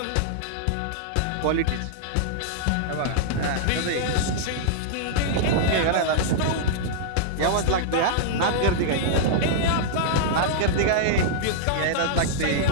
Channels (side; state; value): both; different; correlation -0.02